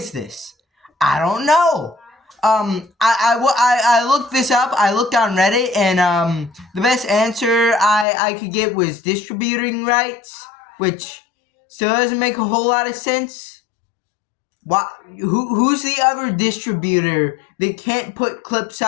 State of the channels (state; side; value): drops out; right; at 8.1 s